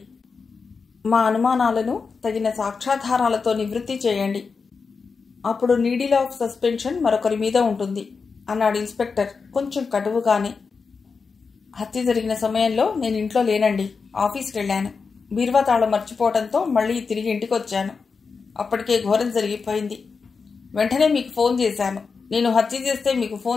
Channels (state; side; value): quieter; right; 5.0 dB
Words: మా అనుమానాలను తగిన సాక్ష్యాధారాలతో నివృత్తి చేయండి. అప్పుడు నీడిల్ ఆఫ్ సస్పెన్షన్ మరొకరి మీద ఉంటుంది అన్నాడు ఇన్స్పెక్టర్ కొంచెం కటువుగానే. హత్య జరిగిన సమయంలో నేను ఇంట్లో లేనండి. ఆఫీస్కి వెళ్ళాను. బీరువా తాళం మర్చిపోవడంతో మళ్ళీ తిరిగి ఇంటికి వచ్చాను. అప్పటికే ఘోరం జరిగిపోయింది. వెంటనే మీకు ఫోన్ చేశాను. నేను హత్య చేస్తే మీకు